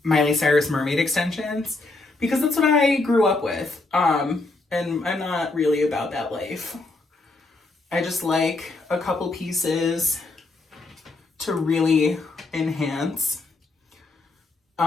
Miley Cyrus mermaid extensions because that's what I grew up with. And I'm not really about that life. I just like a couple pieces to really enhance.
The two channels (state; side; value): quieter; right; 3.3 dB